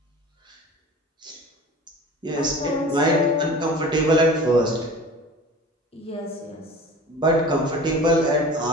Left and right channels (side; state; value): both; normal; correlation 0.40